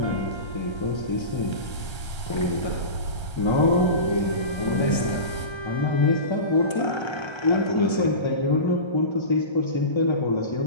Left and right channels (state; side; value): late; right; 1.3 ms